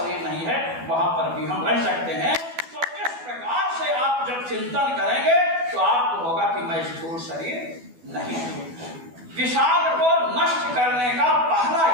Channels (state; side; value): late; left; 12 ms